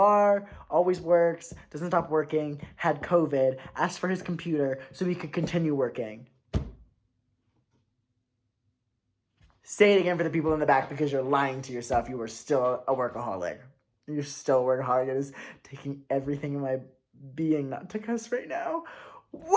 always works, doesn't stop working, had COVID, asked for his computer so he could continue working. Say it again for the people in the back, because you're lying to yourself. You are still a workaholic. You're still a workaholic. It is taking everything in my being not to cuss right now.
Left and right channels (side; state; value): both; identical; correlation 1.00